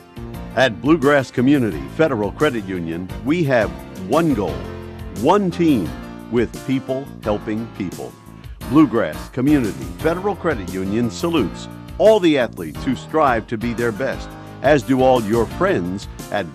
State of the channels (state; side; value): identical; both; correlation 1.00